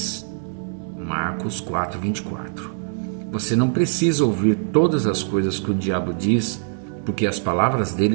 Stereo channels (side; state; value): left; silent; digital silence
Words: Marcos 4:24. Você não precisa ouvir todas as coisas que o diabo diz, porque as palavras